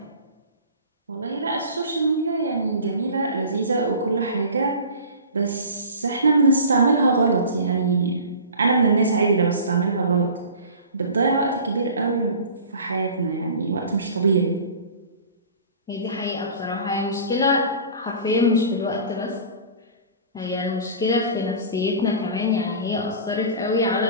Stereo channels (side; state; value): both; inverted; correlation -0.39